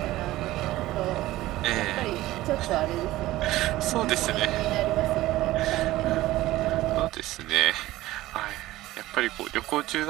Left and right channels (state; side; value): quieter; left; 16.6 dB